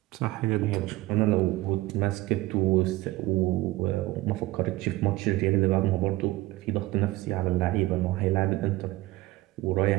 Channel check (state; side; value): quieter; left; 18.7 dB